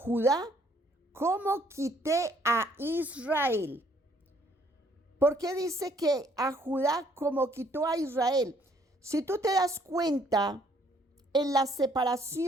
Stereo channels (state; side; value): normal; both; correlation 0.65